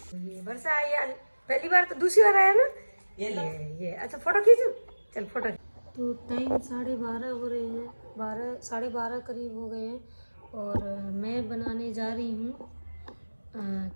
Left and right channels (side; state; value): both; inverted; correlation -1.00